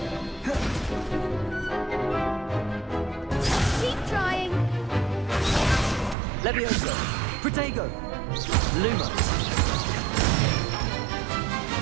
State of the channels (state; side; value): drops out; left; at 6.2 s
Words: Keep trying! Levioso. Protego. Luma.